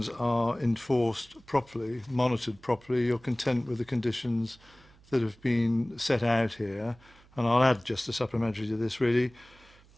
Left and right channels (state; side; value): noise; right; hum, 27 dB below the sound